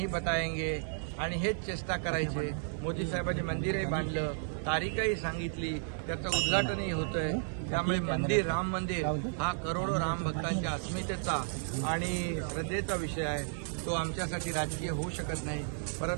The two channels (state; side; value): silent; left; 56 dB below the other